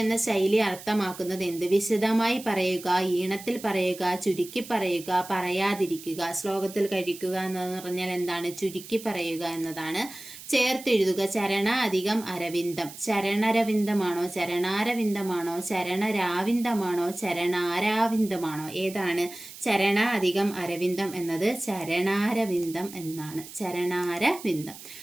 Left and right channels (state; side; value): noise; right; hiss, 15 dB below the sound